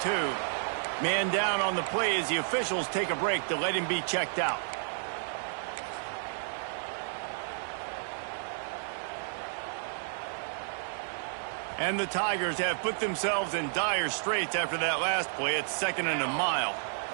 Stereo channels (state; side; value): silent; left; digital silence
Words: Man down on the play as the officials take a break to let him be checked out. And the Tigers have put themselves in dire straits after that last play. It's 2nd and a mile.